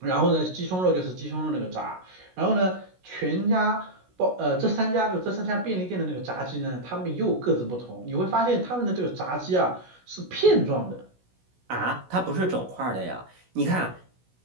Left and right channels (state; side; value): late; left; 16 ms